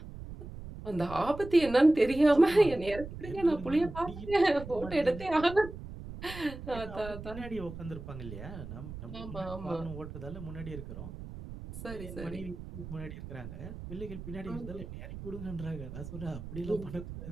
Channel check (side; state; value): right; noise; rumble, 11 dB below the sound